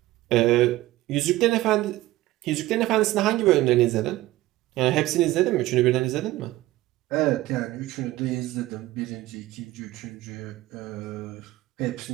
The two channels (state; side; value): quieter; left; 17.1 dB